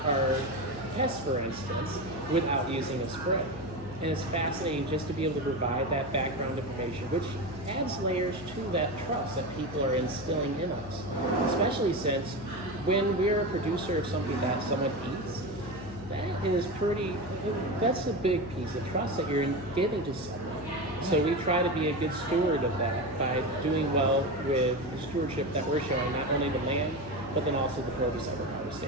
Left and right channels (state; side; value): noise; left; hum, 15 dB below the sound